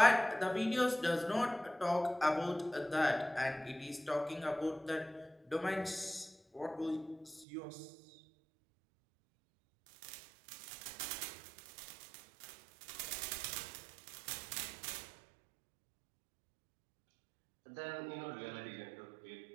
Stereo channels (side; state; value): left; drops out; at 7.5 s